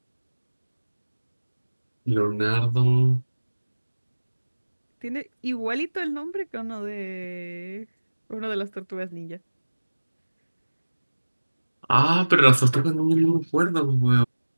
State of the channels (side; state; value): both; inverted; correlation -1.00